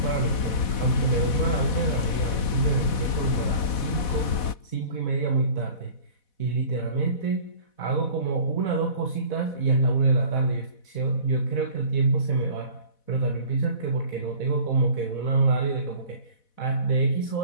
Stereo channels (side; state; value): right; late; 4.1 ms